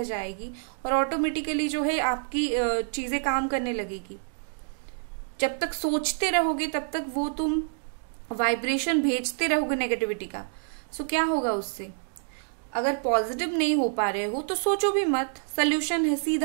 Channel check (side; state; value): left; silent; digital silence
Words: जाएगी और ऑटोमेटिकली जो है आपकी चीजें काम करने लगेगी। जब तक सोचते रहोगे तब तक वो तुम वाइब्रेशन भेजते रहोगे नेगेटिविटी का। सो क्या होगा उससे? अगर पॉजिटिव नहीं हो पा रहे हो तो सोचो भी मत, सोल्यूशन है